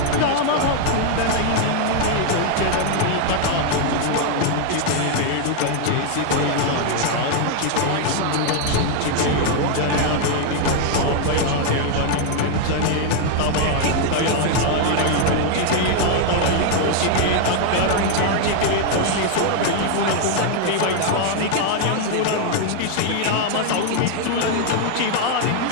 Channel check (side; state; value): both; different; correlation 0.00